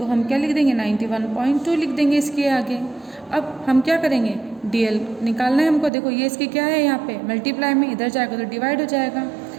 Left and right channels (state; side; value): drops out; left; at 5.9 s